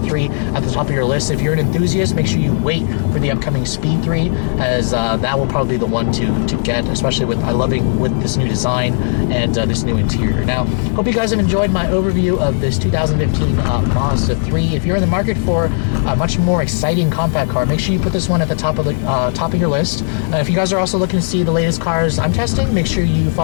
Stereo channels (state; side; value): silent; right; 62 dB below the other